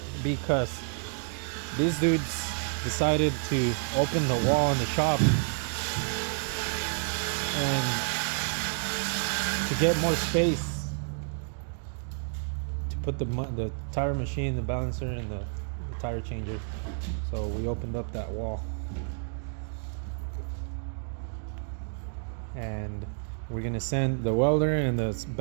because these dudes decided to open the wall in the shop, and to get more space to put the tire machine, the balancer, and the tire changer. So we opened up that wall, and we're gonna send the welder and the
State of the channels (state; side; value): silent; left; digital silence